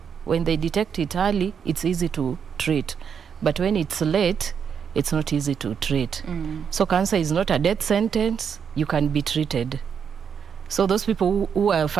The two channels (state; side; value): quieter; left; 7.1 dB